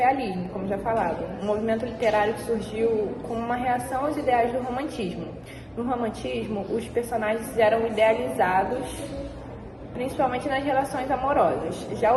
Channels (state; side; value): identical; both; correlation 1.00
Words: como já falado, um movimento literário que surgiu como uma reação aos ideais do romantismo. No romantismo, os personagens eram idealizados, principalmente nas relações amorosas. Já